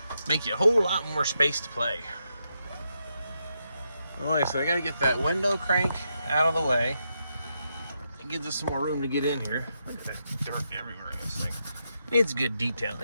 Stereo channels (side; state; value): both; inverted; correlation -0.83